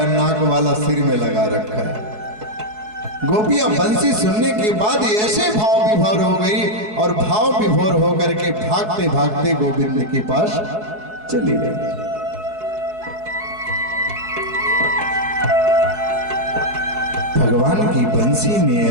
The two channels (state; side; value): late; left; 4.7 ms